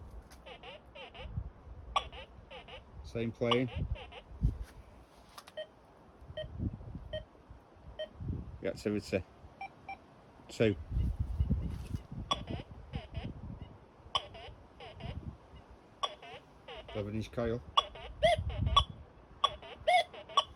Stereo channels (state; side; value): identical; both; correlation 1.00